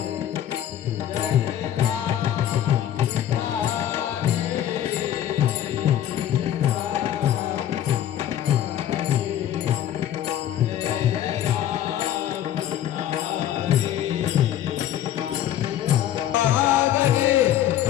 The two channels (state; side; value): quieter; right; 11.3 dB